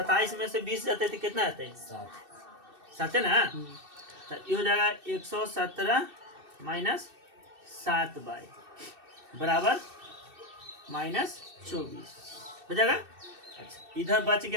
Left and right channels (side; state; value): left; late; 2.6 ms